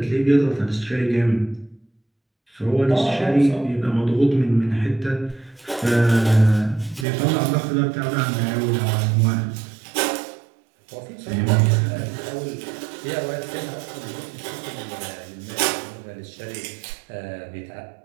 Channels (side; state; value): left; drops out; at 7.1 s